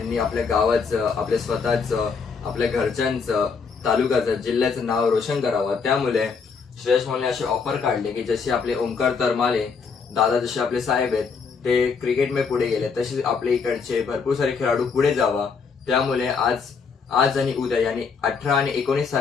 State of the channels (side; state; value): right; quieter; 5.4 dB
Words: आपल्या गावाचं, आपल्या स्वतःचं, आपल्या घरच्यांचं, तालुक्याचं, जिल्ह्याचं नाव रोशन करावं. त्यामुळे श्रेयस मोहनने असे ऑफर काढले की जसे आपले ओमकार तरमाले दादा, जसे आपले साहेब आहेत ते क्रिकेटमध्ये पुढे गेले, तसेच आपल्या इकडचे भरपूर सारे खेळाडू पुढे जावा. त्यामुळे आज आणि उद्या यानी 18 आणि 19